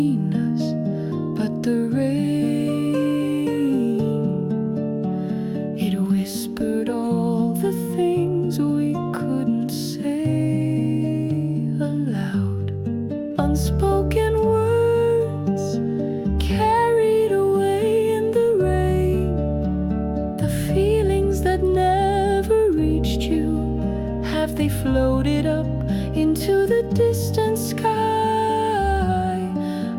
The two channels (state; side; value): identical; both; correlation 1.00